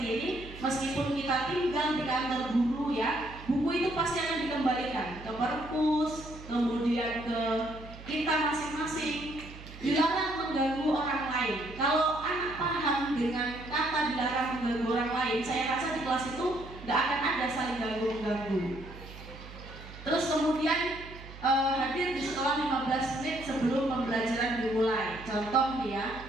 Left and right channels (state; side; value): noise; right; hum, 15 dB below the sound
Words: ini, meskipun kita tinggal di kantor guru, ya, buku itu pasti akan dikembalikan ke perpus, kemudian ke kita masing-masing. Dilarang mengganggu orang lain. Kalau anak paham dengan kata dilarang mengganggu orang lain, saya rasa di kelas itu nggak akan ada saling ganggu-ganggu. Terus kemudian hadir di sekolah 15 menit sebelum pembelajaran dimulai. Contoh, ya,